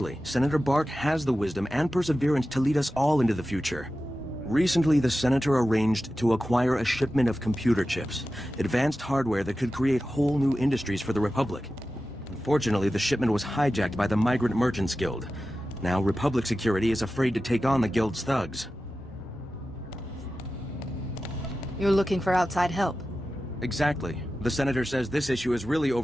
Senator Bark has the wisdom and perseverance to lead us all into the future. Recently, the Senator arranged to acquire a shipment of computer chips, advanced hardware that could create whole new industries for the Republic. Unfortunately, the shipment was hijacked by the Migrant Merchants Guild. Now, Republic security is afraid to take on the Guild's thugs. You're looking for outside help? Exactly. The Senator says this issue is really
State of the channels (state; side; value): normal; both; correlation 0.93